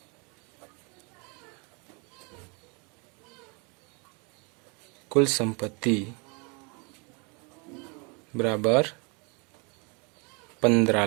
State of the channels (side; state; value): left; quieter; 32.0 dB